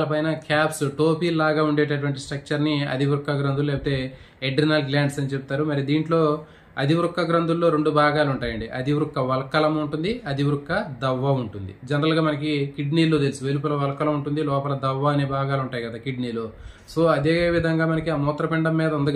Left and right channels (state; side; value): identical; both; correlation 1.00